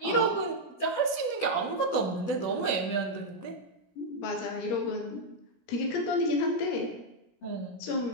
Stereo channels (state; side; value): late; right; 17 ms